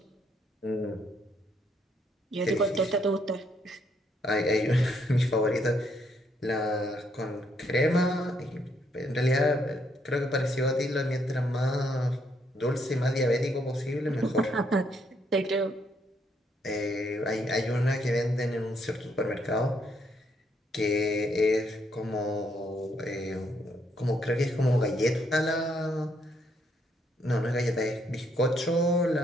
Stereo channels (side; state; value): both; normal; correlation 0.73